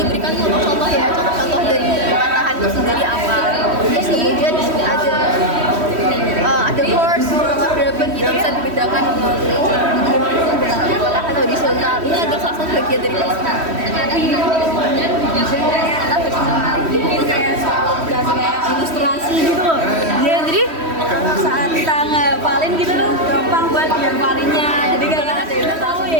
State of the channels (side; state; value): left; late; 3.1 ms